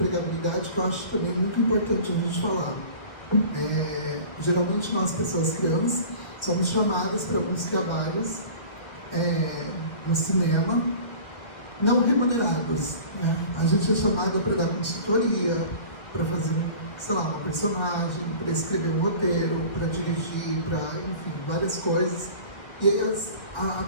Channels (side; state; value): right; late; 1.4 ms